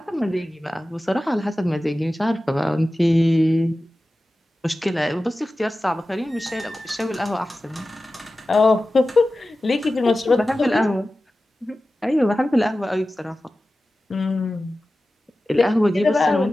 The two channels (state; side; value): normal; both; correlation 0.95